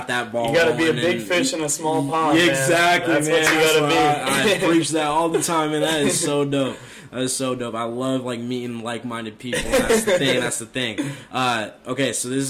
that ball. You got to be a big fish in a small pond. Exactly, man. That's man. what you got to I be. preach that all the time, and that is so dope. That is so dope. I love, like, meeting like-minded people. That's the thing. That's the thing. Okay, so this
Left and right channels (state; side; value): identical; both; correlation 1.00